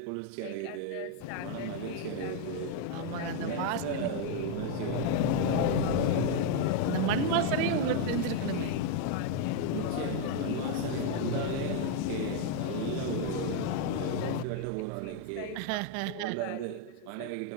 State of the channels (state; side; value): different; both; correlation 0.01